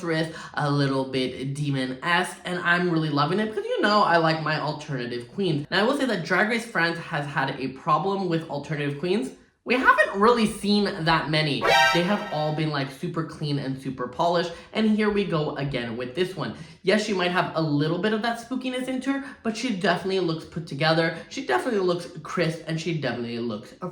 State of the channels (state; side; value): identical; both; correlation 1.00